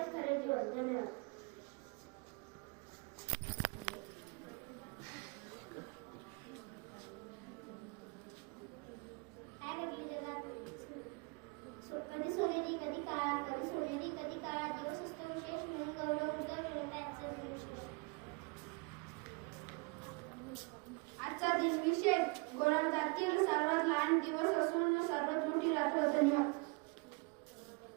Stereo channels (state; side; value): quieter; left; 30.8 dB